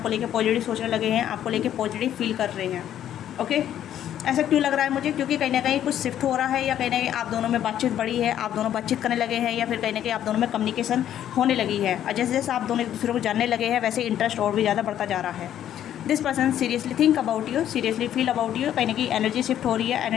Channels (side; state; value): right; quieter; 10.9 dB